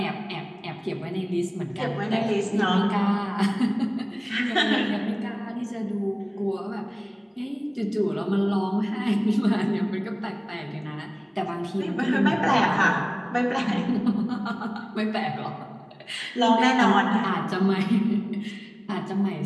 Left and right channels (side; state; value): both; identical; correlation 1.00